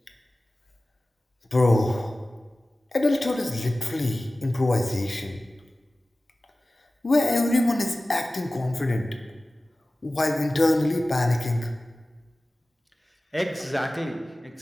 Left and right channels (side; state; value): both; normal; correlation 0.97